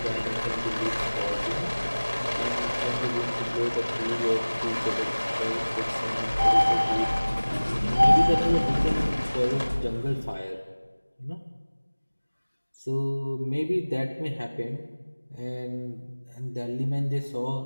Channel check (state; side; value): inverted; both; correlation -1.00